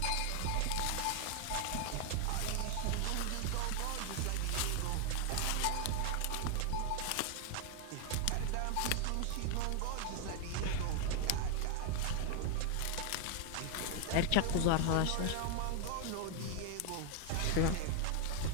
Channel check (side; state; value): both; different; correlation 0.00